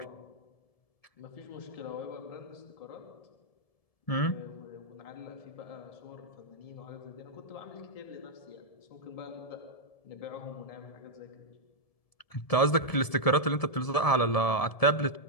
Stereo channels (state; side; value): late; right; 1.7 ms